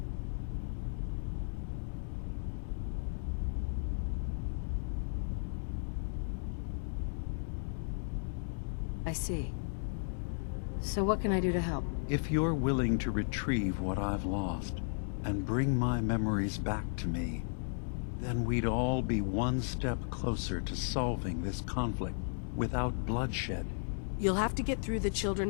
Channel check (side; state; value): right; silent; digital silence